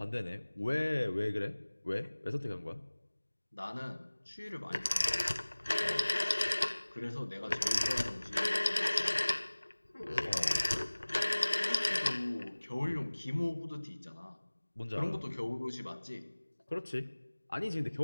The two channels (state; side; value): inverted; both; correlation -1.00